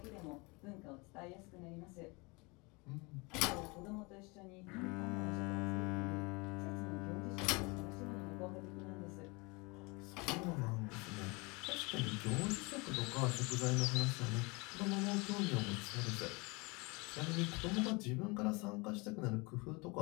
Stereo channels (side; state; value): right; quieter; 27.2 dB